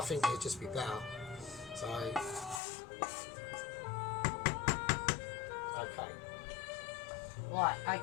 think it'd just be better. So, okay. Right,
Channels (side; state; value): right; drops out; at 2.6 s